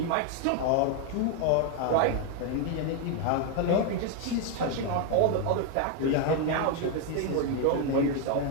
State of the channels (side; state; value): both; different; correlation 0.01